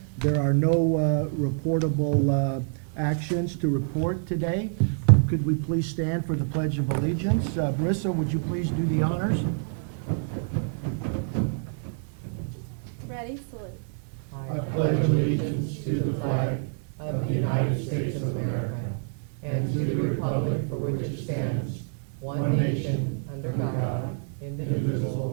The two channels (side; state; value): left; silent; 60 dB below the other